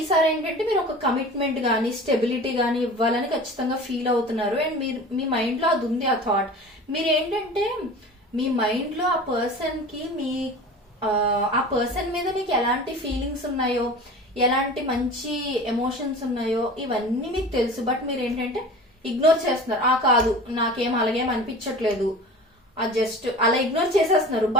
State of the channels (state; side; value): normal; both; correlation 0.37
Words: ఏంటంటే మీరు ఒక కమిట్మెంట్ గానీ స్టెబిలిటీ గానీ ఇవ్వాలని ఖచ్చితంగా ఫీల్ అవుతున్నారు. అండ్ మీరు మీ మైండ్ లో అది ఉంది ఆ థాట్. మీరు ఏంటంటే మీ మైండ్ లో ఆ పర్సన్ కి ఆ పర్సన్ మీద మీకు ఎలాంటి ఫీలింగ్స్ ఉన్నాయో, ఎలాంటి మంచి ఎమోషన్స్ ఉన్నాయో ఇవన్నీ మీకు తెలుసు. బట్ మీరు ఏంటంటే ఇగ్నోర్ చేస్తున్నారు. కాదు నాకేం అలాగేం అనిపించట్లేదు, జస్ట్ అలా ఇగ్నోర్ చేసేస్తున్నారు.